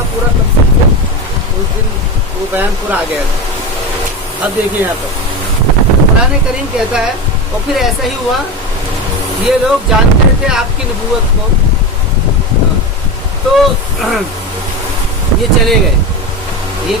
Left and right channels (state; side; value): normal; both; correlation 0.21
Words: پورا تفصیل سے اس دن وہ بیان پورا آ گیا تھا. اب دیکھیں یہاں پر قرآن کریم کہتا ہے اور پھر ایسا ہی ہوا، یہ لوگ جانتے تھے آپ کی نبوت کو تو یہ چلے گئے. یہ